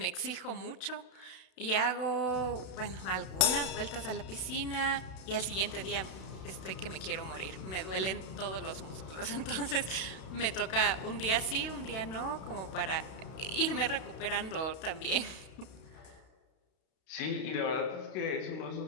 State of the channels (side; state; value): right; late; 32 ms